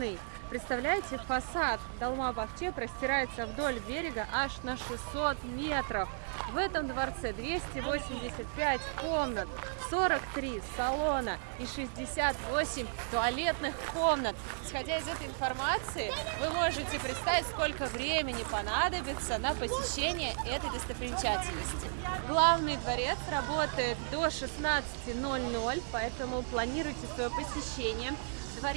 Представляете, фасад Долмабахче простирается вдоль берега аж на 600 метров. В этом дворце 285 комнат, 43 салона и 68 туалетных комнат. Исходя из этой информации, вы можете представить, сколько времени понадобится на посещение этой достопримечательности. Главный дворец работает до 16:00, поэтому планируйте свое посещение.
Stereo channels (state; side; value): silent; left; digital silence